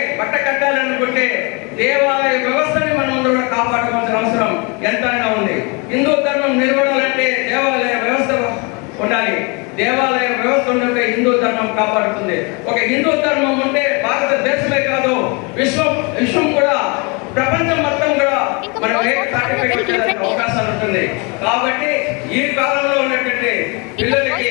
బట్ట కట్టాలనుకుంటే దేవాలయ వ్యవస్థని మనం ముందు కూడా కాపాడుకోవాల్సిన అవసరం ఎంతైనా ఉంది. హిందూ ధర్మం నిలబడాలంటే దేవాలయ వ్యవస్థ ఉండాలి. దేవాలయ వ్యవస్థ ఉంటే హిందూ ధర్మం కాపాడుతుంది. ఒక హిందూ ధర్మం ఉంటే భారతదేశమే కాదు విశ్వం కూడా, ప్రపంచం మొత్తం కూడా మనం అవకాశాలు ఉంటుంది. కాబట్టి ఈ కాలంలో ఉన్నటువంటి పిల్లలకి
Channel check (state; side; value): quieter; right; 30.6 dB